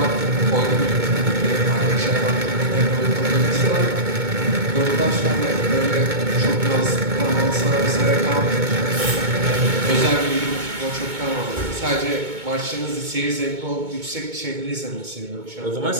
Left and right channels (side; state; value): left; late; 2.2 ms